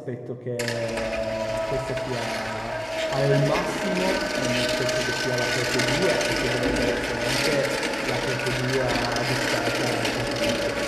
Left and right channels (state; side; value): identical; both; correlation 1.00